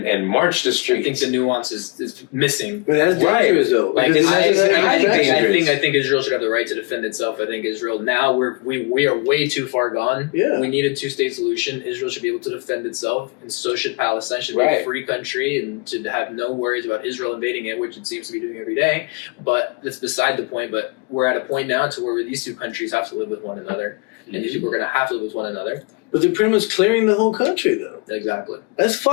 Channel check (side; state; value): right; quieter; 30.6 dB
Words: march the streets. I think the nuance is missing. But that's dangerous, though. Like, I think Israel should have the right to defend itself. I think Israel now we are way too far gone. Yeah. We need a two-state solution. Israel should be able to defend itself, and so should Palestine. Should be a free country and to have no worries about Israel invading it, which it seems to be doing every day. But that's beside the point. But we're at a point now to where these two countries have to live with one another, and these people are going to have to live with one another. But they're pretty much clearing the whole country, though. Exactly. That's